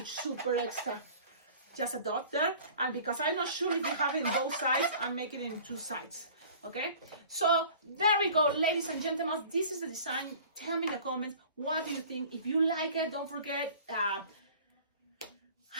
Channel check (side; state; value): both; inverted; correlation -0.45